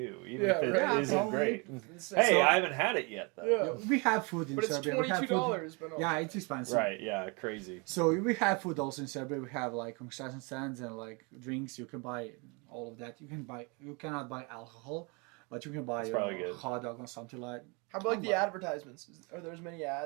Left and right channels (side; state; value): left; quieter; 30.9 dB